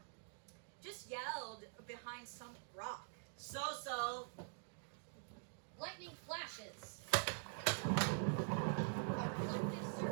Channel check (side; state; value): left; silent; digital silence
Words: Just yelled behind some rock. So. Lightning flashes. A reflective